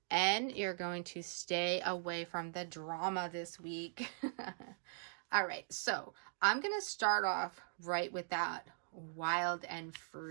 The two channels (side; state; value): left; silent; digital silence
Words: And you're going to stay away from the drama this week. All right, so I'm going to start off right with that wild and